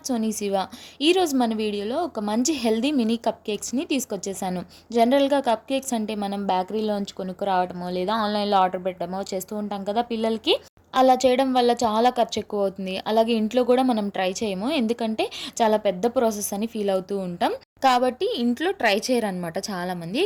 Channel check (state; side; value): identical; both; correlation 1.00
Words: Soni Shiva. ఈరోజు మన వీడియోలో ఒక మంచి హెల్దీ మినీ కప్ కేక్స్ని తీసుకొచ్చేసాను. జనరల్గా కప్ కేక్స్ అంటే మనం బేకరీలోంచి కొనుక్కురావడమో లేదా ఆన్లైన్లో ఆర్డర్ పెట్టడమో చేస్తూ ఉంటాం కదా పిల్లలకి. అలా చేయడం వల్ల చాలా ఖర్చు ఎక్కువ అవుతుంది. అలాగే ఇంట్లో కూడా మనం ట్రై చేయము, ఎందుకంటే చాలా పెద్ద ప్రాసెస్ అని ఫీల్ అవుతూ ఉంటాం. కాబట్టి ఇంట్లో ట్రై చేయరనమాట చాలామంది.